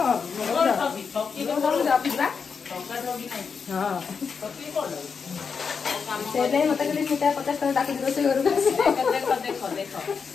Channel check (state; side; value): quieter; right; 5.8 dB